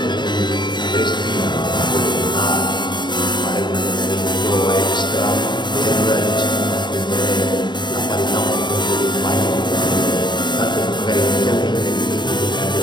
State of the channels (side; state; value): right; late; 0.22 ms